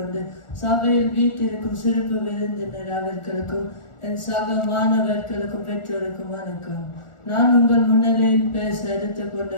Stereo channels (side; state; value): right; late; 1.4 ms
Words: சபையில் வீட்டிற்கும் சிறப்பு விருந்தினர் அவர்களுக்கும் என் சக மாணவர்களுக்கும் பெற்றோருக்கும் வணக்கம். நான் உங்கள் முன்னிலையில் பேச எடுத்துக்கொண்ட